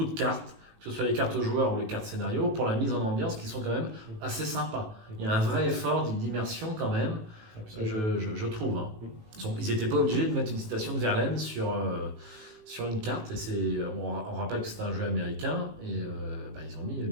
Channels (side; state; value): left; late; 18 ms